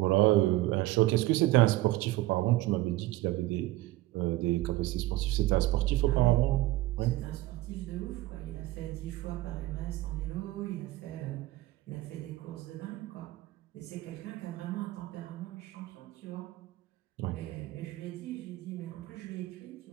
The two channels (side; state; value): left; quieter; 17.7 dB